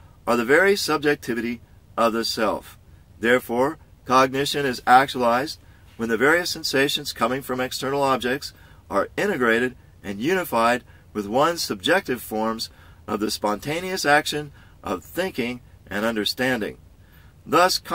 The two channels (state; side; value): identical; both; correlation 1.00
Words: are the very subjectivity of the self. Therefore, cognition is actualized when the various sensations coming from external objects are integrated and unified with one's subjective forms of the spontaneous action of thinking and understanding. Thus,